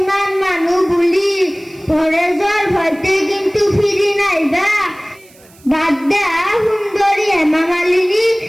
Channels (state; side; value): noise; right; hiss, 27 dB below the sound